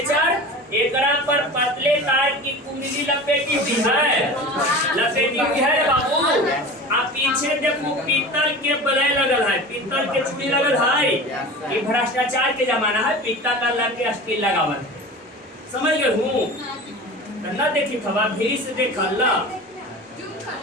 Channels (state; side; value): normal; both; correlation 0.34